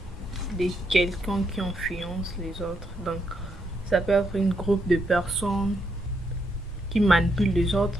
de quelqu'un qui influence les autres. Donc, ça peut être un groupe de personnes qui manipulent les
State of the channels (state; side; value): normal; both; correlation 0.78